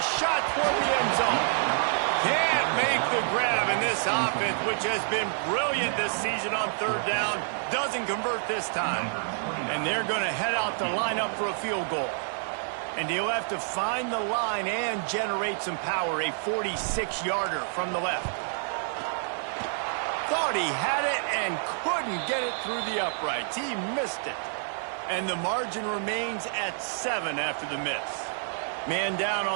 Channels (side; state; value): left; silent; 59 dB below the other